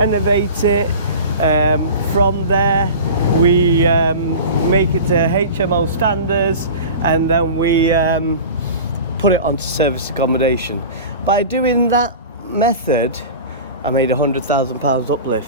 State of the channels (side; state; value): both; inverted; correlation -0.35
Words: it, from there we make it to HMO standards, and then we put it onto service accommodation. By doing that method, I made £100,000